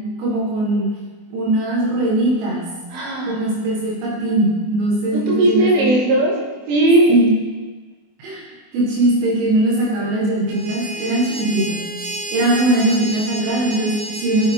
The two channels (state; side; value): late; left; 24 ms